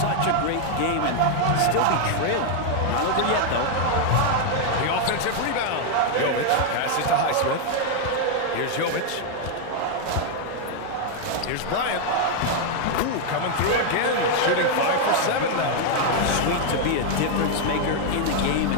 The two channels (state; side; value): different; both; correlation 0.00